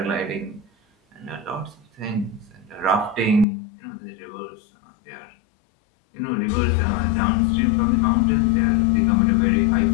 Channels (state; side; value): drops out; right; at 3.5 s